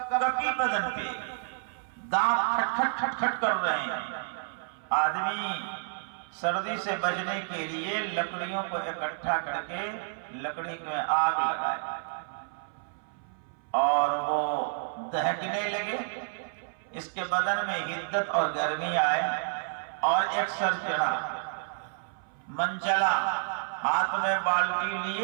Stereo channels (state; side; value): silent; left; 58 dB below the other